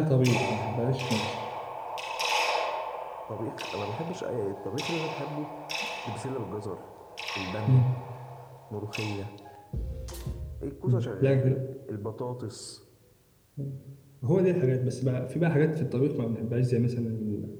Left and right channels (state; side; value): identical; both; correlation 1.00